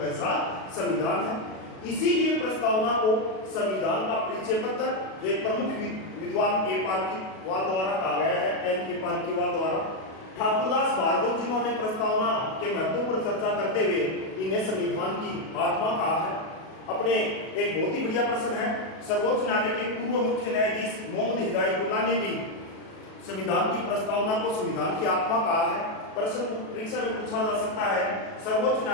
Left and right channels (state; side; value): late; right; 37 ms